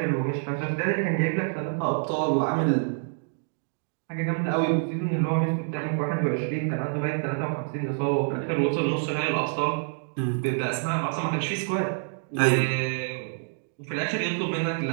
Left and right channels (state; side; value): silent; left; 57 dB below the other